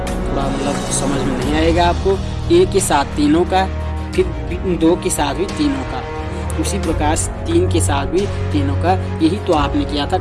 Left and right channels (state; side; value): identical; both; correlation 1.00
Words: थोड़ा मतलब समझ में नहीं आएगा आपको। ए के साथ तीनों का, फिर 2 के साथ भी तीनों का, उसी प्रकार 3 के साथ भी तीनों का। यही तो आपने किया था